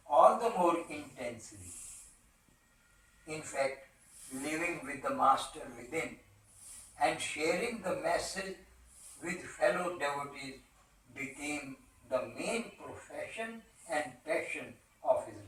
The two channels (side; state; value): both; identical; correlation 1.00